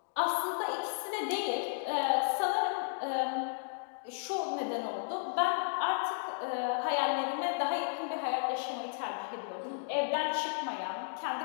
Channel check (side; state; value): right; silent; digital silence